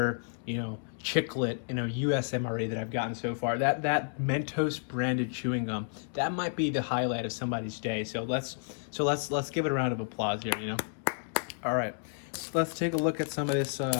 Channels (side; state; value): right; silent; digital silence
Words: you know, chiclet, you know, USMRE that I've gotten so far. That Mentos branded chewing gum, that might be the highlight of somebody's day. So let's give it a round of applause here, you know. All right, let's take a look at some of this